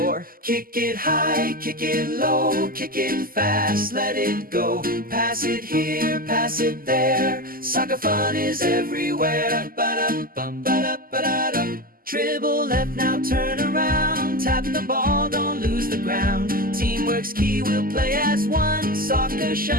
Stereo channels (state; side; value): late; left; 0.42 ms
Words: Kick it high, kick it low, kick it fast, let it go. Pass it here, pass it there. Soccer fun is everywhere. Ba-dum-bum, ba-da-ba-da-dum. Dribble left, now turn around. Tap the ball, don't lose the ground. Teamwork's key, we'll play as one. Soccer